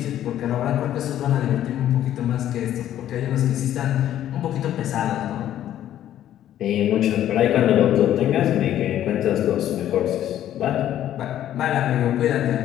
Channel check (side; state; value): right; quieter; 11.8 dB